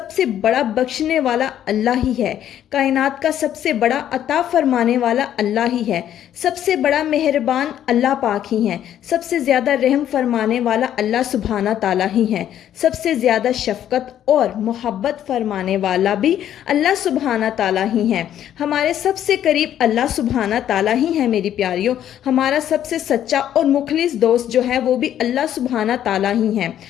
سے بڑا بخشنے والا اللہ ہی ہے، کائنات کا سب سے بڑا عطا فرمانے والا اللہ ہی ہے، سب سے بڑا مہربان اللہ پاک ہی ہے، سب سے زیادہ رحم فرمانے والا اللہ سبحانہ تعالیٰ ہی ہے، سب سے زیادہ شفقت اور محبت فرمانے والا بھی اللہ سبحانہ تعالیٰ ہی ہے۔ ہمارے سب سے قریب اللہ سبحانہ تعالیٰ ہی ہے میری پیاریوں۔ ہمارا سب سے سچا اور مخلص دوست جو ہے وہ بھی اللہ سبحانہ تعالیٰ ہی ہے۔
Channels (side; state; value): right; quieter; 10.8 dB